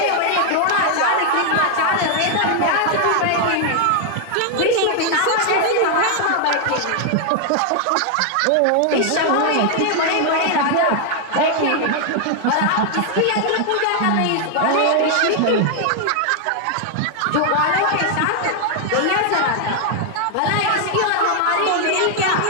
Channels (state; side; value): different; both; correlation 0.00